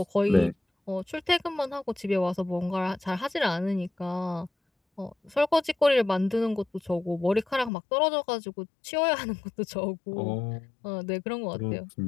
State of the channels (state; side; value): drops out; right; at 7.7 s